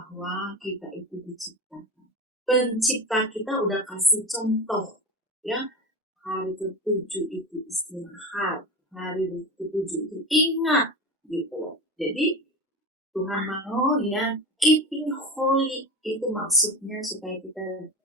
kita itu diciptakan. Pencipta kita udah kasih contoh, ya, hari ketujuh itu istirahat, hari ketujuh itu ingat, gitu. Jadi Tuhan mau ya keeping holy itu maksudnya supaya kita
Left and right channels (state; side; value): normal; both; correlation 0.26